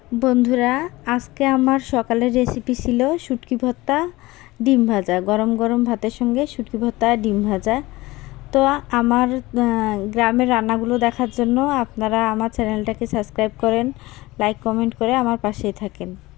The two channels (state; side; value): quieter; right; 20.0 dB